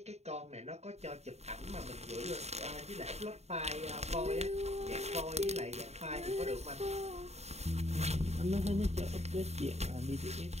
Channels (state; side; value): late; left; 0.31 ms